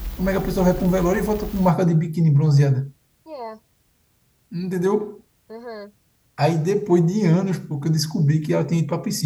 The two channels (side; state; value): both; identical; correlation 1.00